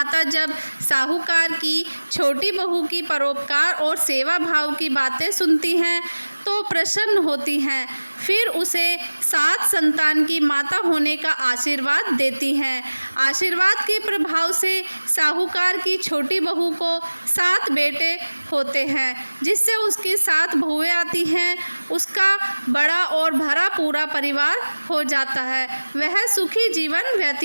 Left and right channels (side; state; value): both; inverted; correlation -1.00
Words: जब साहूकार की छोटी बहू की परोपकार और सेवा भाव की बातें सुनती हैं तो प्रसन्न होती हैं। फिर उसे 7 संतान की माता होने का आशीर्वाद देती हैं। आशीर्वाद के प्रभाव से साहूकार की छोटी बहू को 7 बेटे होते हैं, जिससे उसकी 7 बहुएं आती हैं। उसका बड़ा और भरा पूरा परिवार हो जाता है। वह सुखी जीवन